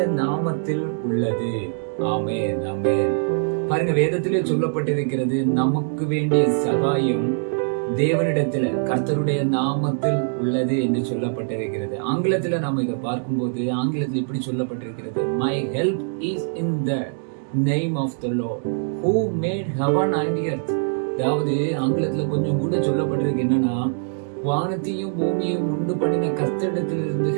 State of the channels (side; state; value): left; silent; digital silence